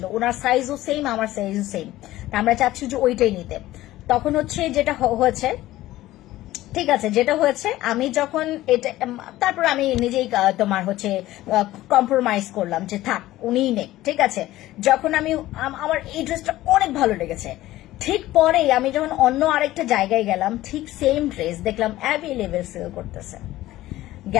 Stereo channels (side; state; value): right; quieter; 15.9 dB